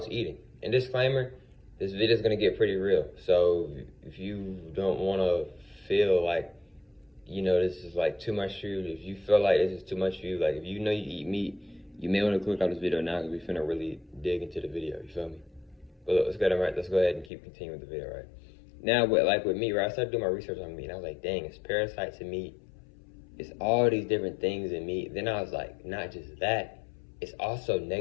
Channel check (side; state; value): right; drops out; at 17.3 s